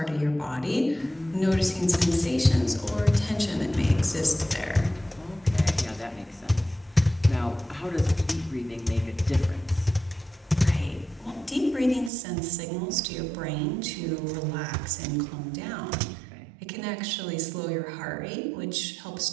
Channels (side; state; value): left; drops out; at 12.1 s